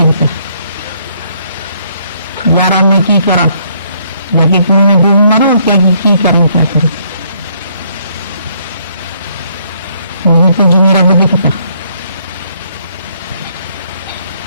यारा मैं की करा, जाके कुएं में डूब मारो, क्या की करूं, क्या करूं? मुझे तो जो मेरा रब दिखता।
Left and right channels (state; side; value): inverted; both; correlation -0.68